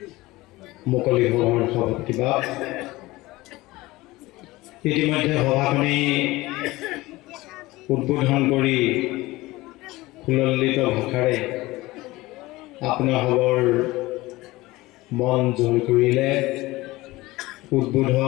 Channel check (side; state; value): right; quieter; 19.6 dB